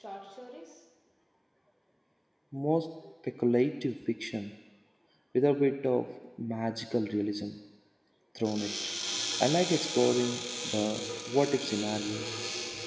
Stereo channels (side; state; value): both; identical; correlation 1.00